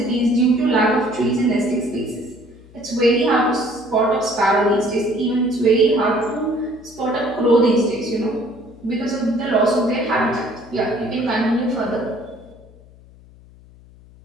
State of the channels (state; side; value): noise; left; hum, 24 dB below the sound